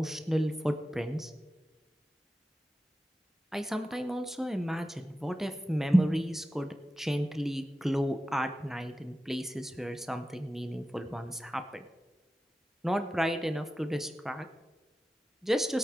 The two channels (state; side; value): normal; both; correlation 0.93